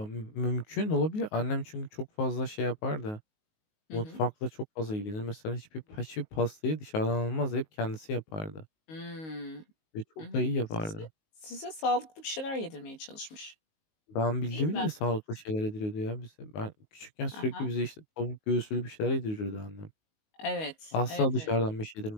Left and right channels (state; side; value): late; right; 19 ms